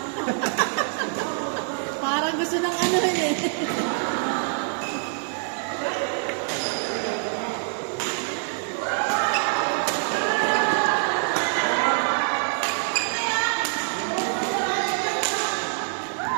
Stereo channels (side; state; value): left; silent; 58 dB below the other